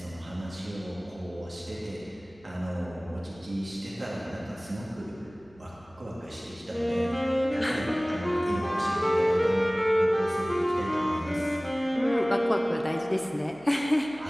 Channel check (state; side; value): noise; left; hum, 28 dB below the sound